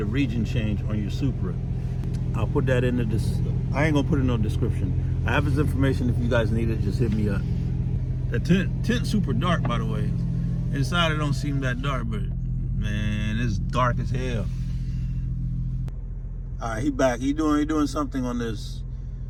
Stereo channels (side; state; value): both; identical; correlation 1.00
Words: region change on your Supra. I'll put that in I ain't gonna put it in no description. I have his information. If you guys need it, just hit me up. The tint super dark, by the way. Inside it don't seem that dark, but man, it's dark as hell. All right, he back. He doing something on this.